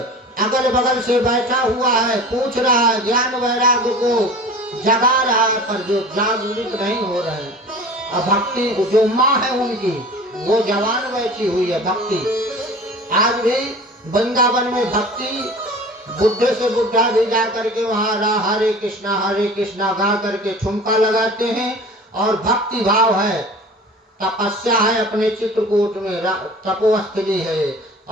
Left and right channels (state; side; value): normal; both; correlation 0.40